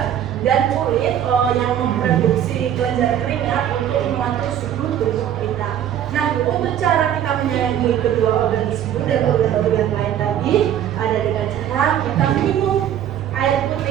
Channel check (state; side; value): quieter; left; 10.4 dB